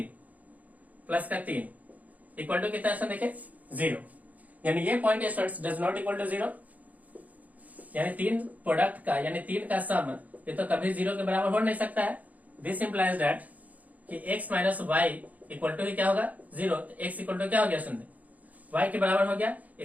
इक्वल टू कितना स्टूडेंट, देखिए 0। यानी ये point students does not equal to 0, यानी 3 प्रोडक्ट का, यानी 3 का सम ये तो कभी 0 के बराबर हो नहीं सकता है। दिस इंप्लाइज दैट कि x minus y equal to क्या होगा, 0। तो x इक्वल टू क्या हो गया सुनते, y के बराबर हो गया।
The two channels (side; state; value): left; late; 0.076 ms